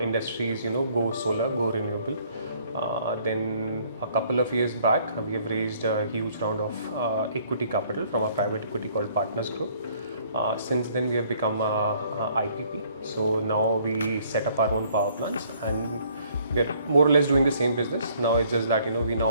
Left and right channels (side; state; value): both; inverted; correlation -0.62